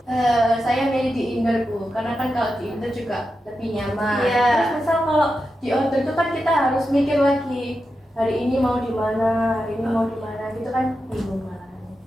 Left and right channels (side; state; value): both; normal; correlation 0.89